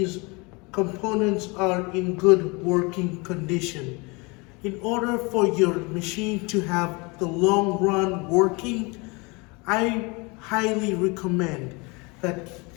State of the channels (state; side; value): quieter; right; 27.9 dB